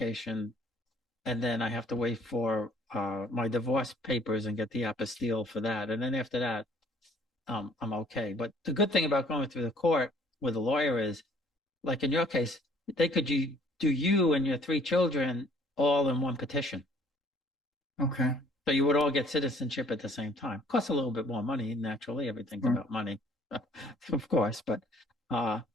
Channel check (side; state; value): both; normal; correlation 0.58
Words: and then I have to wait for my divorce papers and get the apostille for that, and then after that, I'm okay. But the good thing about going through the court with a lawyer is, like in your case, they could do you and your three children all in one petition. Okay. So you would all get citizenship at the same time. Costs a little bit more money, naturally. Everything's Sure. about money, of course. But uh,